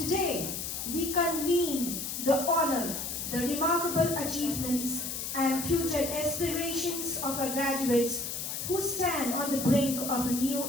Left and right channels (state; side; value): noise; left; hiss, 4 dB below the sound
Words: we convene the honor, the remarkable achievements and future aspirations of our graduates who stand on the brink of a new